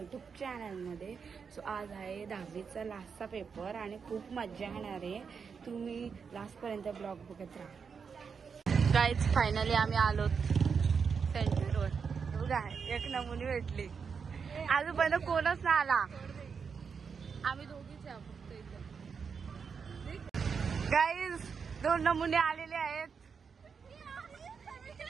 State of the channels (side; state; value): left; quieter; 6.0 dB